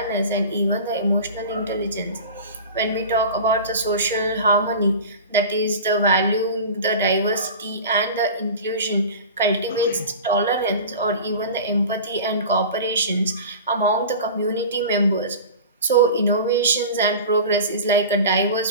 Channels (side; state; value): both; inverted; correlation -0.35